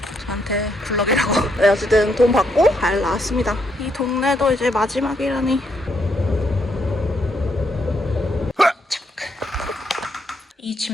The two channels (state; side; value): normal; both; correlation 0.75